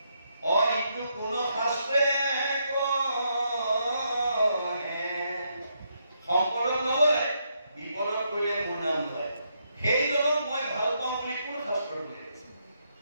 অইটো কোন শাস্ত্ৰে কহে। সম্পদত নলয়, বিপদত পৰিলে মোৰ নাম লয়, সেইজনক মই ভাল পাওঁ বুলি কোন শাস্ত্ৰত কৈছে?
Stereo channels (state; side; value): inverted; both; correlation -0.78